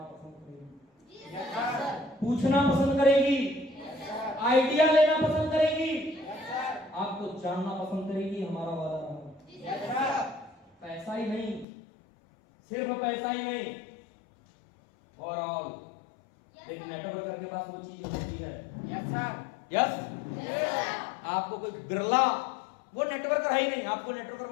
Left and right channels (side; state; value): right; drops out; at 11.7 s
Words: पसंद करेगी, पूछना पसंद करेगी, आइडिया लेना पसंद करेगी, आपको जानना पसंद करेगी। हमारा वादा रहा। पैसा ही नहीं, सिर्फ पैसा ही नहीं, और ऑल एक नेटवर्कर के पास वो चीज होती है। यस आपको कोई बिरला, वो नेटवर्कर है ही नहीं, आपको नेटवर्कर